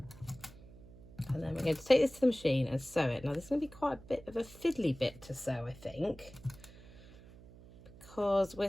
And then we're going to take this to the machine and sew it. Now this is going to be quite a bit of a fiddly bit to sew, I think, because we're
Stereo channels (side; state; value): right; noise; hum, 20 dB below the sound